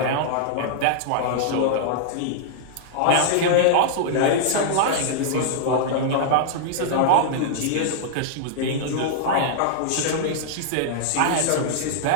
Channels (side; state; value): both; different; correlation -0.01